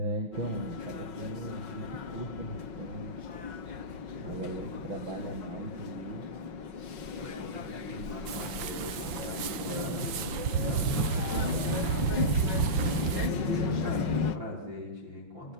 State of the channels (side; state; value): left; late; 5.9 ms